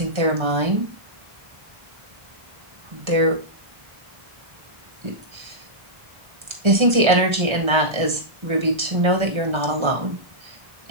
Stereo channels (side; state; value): left; late; 1.3 ms